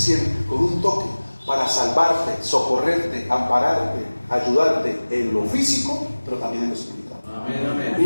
con un toque para salvarte, socorrerte, ampararte, ayudarte en lo físico, pero también en lo espiritual. Amén, amén.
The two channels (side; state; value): both; inverted; correlation -1.00